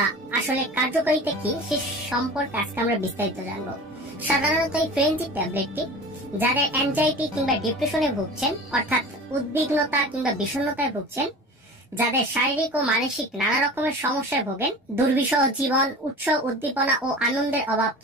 আসলে কার্যকারিতা কি সে সম্পর্কে আজকে আমরা বিস্তারিত জানবো। সাধারণত এই ফ্রেঞ্জিট ট্যাবলেটটি যাদের অ্যাংজাইটি কিংবা ডিপ্রেশনে ভুগছেন, অর্থাৎ উদ্বিগ্নতা কিংবা বিষণ্ণতায় ভুগছেন, যাদের শারীরিক ও মানসিক নানা রকমের সমস্যায় ভোগেন, দুর্বিষহ জীবন, উৎস উদ্দীপনা ও আনন্দের অভাব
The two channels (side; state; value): both; normal; correlation 0.37